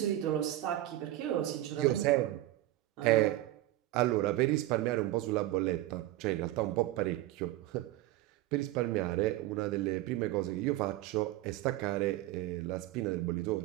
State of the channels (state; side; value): quieter; left; 15.6 dB